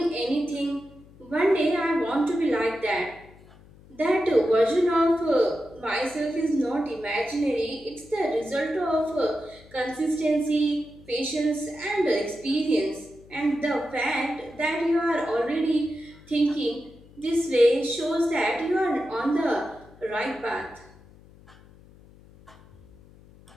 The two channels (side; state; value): left; noise; hum, 24 dB below the sound